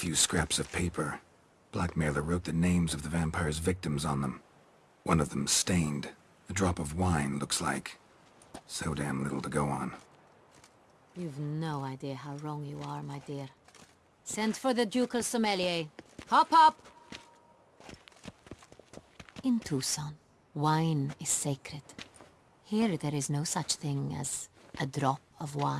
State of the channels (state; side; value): identical; both; correlation 1.00